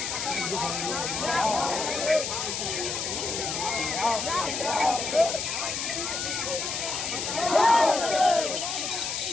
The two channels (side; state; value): left; noise; hiss, 3 dB below the sound